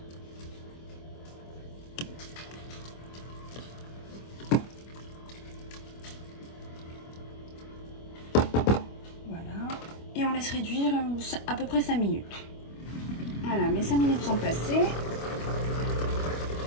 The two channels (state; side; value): late; right; 25 ms